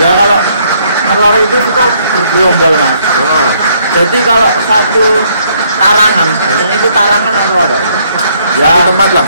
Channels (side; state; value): both; inverted; correlation -0.68